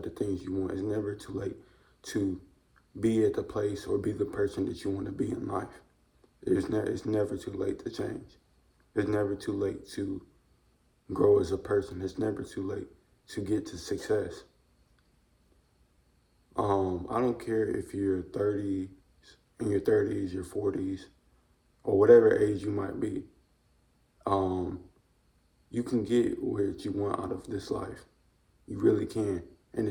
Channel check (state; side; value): identical; both; correlation 1.00